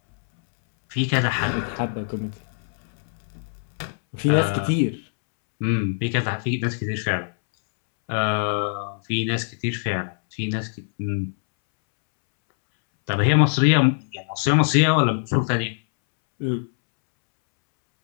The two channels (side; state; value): right; silent; 63 dB below the other